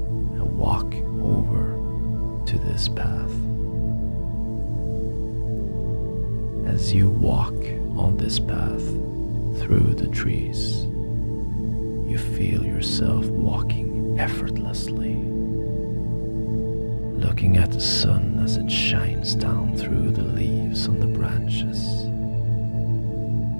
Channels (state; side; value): inverted; both; correlation -1.00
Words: and walk over to this path. As you walk on this path through the trees, you feel yourself walking effortlessly, looking at the sun as it shines down through the leaves on the branches,